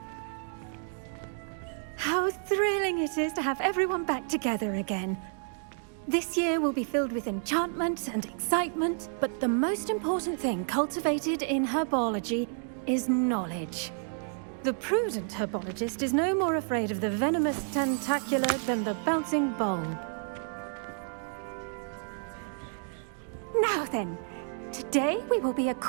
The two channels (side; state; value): left; silent; 58 dB below the other